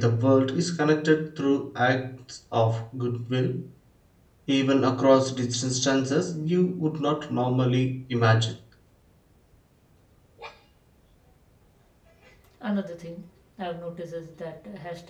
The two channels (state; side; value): identical; both; correlation 1.00